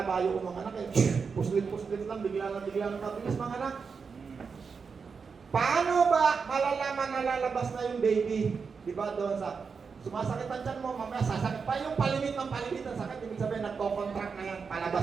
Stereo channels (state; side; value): quieter; left; 5.5 dB